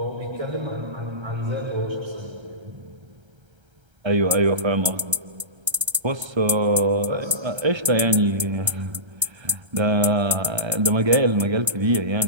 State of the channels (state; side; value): late; left; 1.3 ms